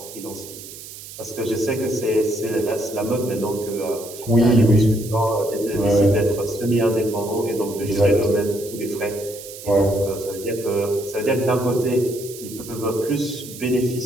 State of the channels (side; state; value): right; noise; hiss, 14 dB below the sound